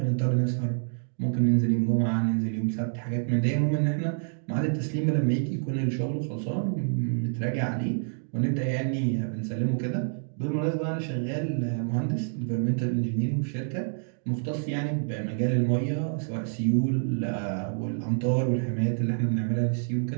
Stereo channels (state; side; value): silent; left; digital silence